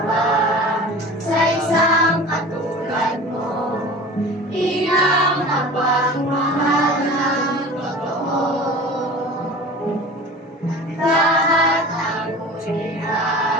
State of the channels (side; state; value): both; normal; correlation 0.38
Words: ba sa isang katulad mo? Inang napagmahal ng totoo. Lahat ng uri